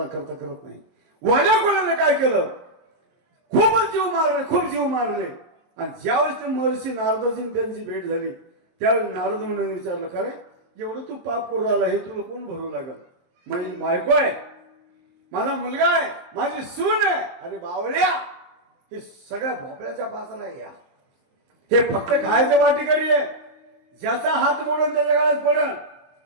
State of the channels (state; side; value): late; left; 23 ms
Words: नाही. वाल्या कोळीने काय केलं, खूपच जीव मारले, खूप जीव मारले. आणि ज्यावेळेस ते महर्षी नारदाची त्यांची भेट झाली त्यावेळेस नारद म्हणून विचारलं का रे एवढं तू पाप करू आला हे तुला कोण भरू लागल. माझी बायको आहे, माझा मुलगा आहे, माझी सून आहे. अरे बावळ्या हे सगळ्या भोपळ्याच्या पासाला या, हे फक्त खायचं वाटेकरी आहे. ज्याचा हात मोडून त्याच्या काळात पडल